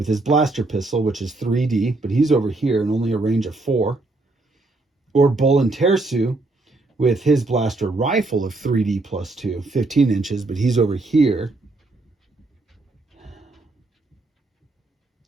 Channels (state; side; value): quieter; left; 3.1 dB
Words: his blaster pistol, which is 3D, but he's over here and only a range of 4. Or Bolin Tersu with his blaster rifle of 3D plus 2, 15 inches, but he's over here.